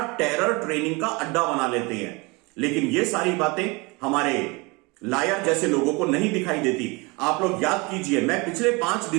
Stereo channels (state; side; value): quieter; left; 26.6 dB